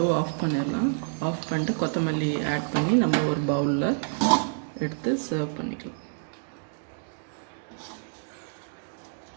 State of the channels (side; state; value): left; silent; digital silence